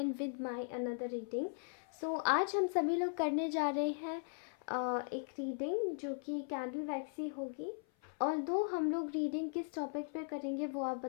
with my another reading. So आज हम सभी लोग करने जा रहे हैं एक रीडिंग जो कि कैंडल वैक्स ही होगी। और दो हम लोग रीडिंग किस टॉपिक पे करेंगे वो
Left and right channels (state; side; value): silent; right; 52 dB below the other